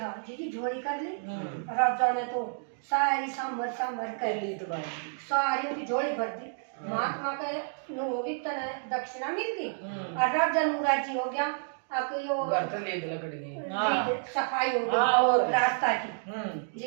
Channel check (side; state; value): left; silent; digital silence